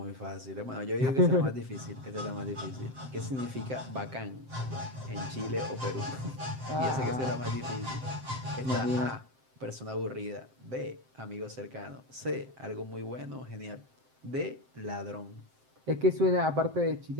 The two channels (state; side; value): late; left; 7.7 ms